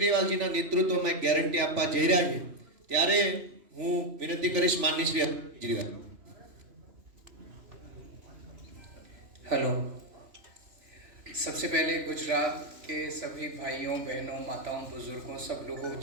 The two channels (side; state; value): left; late; 3.0 ms